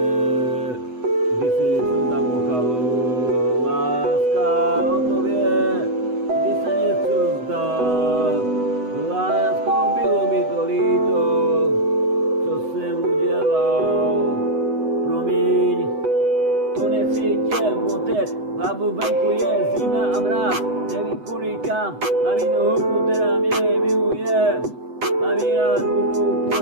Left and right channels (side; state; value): left; late; 8.0 ms